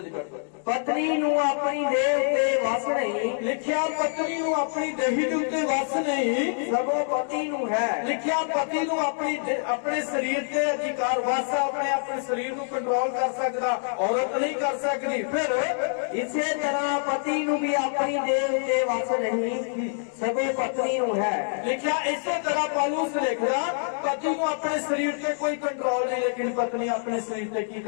ਪੜ੍ਹੋ। ਪਤਨੀ ਨੂੰ ਆਪਣੀ ਦੇਹ ਉੱਤੇ ਵਸ ਨਹੀਂ, ਲਿਖਿਆ ਪਤਨੀ ਨੂੰ ਆਪਣੀ ਦੇਹੀ ਦੇ ਉੱਤੇ ਵਸ ਨਹੀਂ, ਸਗੋਂ ਪਤੀ ਨੂੰ ਹੈ। ਲਿਖਿਆ ਪਤੀ ਨੂੰ ਆਪਣੇ ਸਰੀਰ ਤੇ ਅਧਿਕਾਰ ਵਸ ਆ, ਆਪਣੇ ਸਰੀਰ ਨੂੰ ਕੰਟਰੋਲ ਕਰ ਸਕਦਾ, ਔਰਤ ਨਹੀਂ ਕਰ ਸਕਦੀ। ਫਿਰ ਇਸੇ ਤਰ੍ਹਾਂ ਪਤੀ ਨੂੰ ਵੀ ਆਪਣੀ ਦੇਹ ਉੱਤੇ ਵਸ ਨਹੀਂ, ਸਗੋਂ ਪਤਨੀ ਨੂੰ ਹੈ। ਲਿਖਿਆ ਇਸੇ ਤਰ੍ਹਾਂ ਪੌਲੁਸ ਲਿਖਦਾ ਪਤੀ ਨੂੰ ਆਪਣੇ ਸਰੀਰ ਤੇ ਕੋਈ ਕੰਟਰੋਲ ਨਹੀਂ, ਲੇਕਿਨ ਪਤਨੀ ਆਪਣੇ ਸਰੀਰ ਤੇ ਕੀ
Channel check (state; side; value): silent; right; digital silence